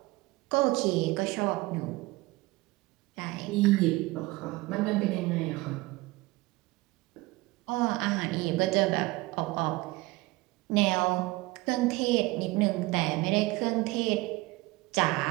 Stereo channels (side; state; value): left; quieter; 21.4 dB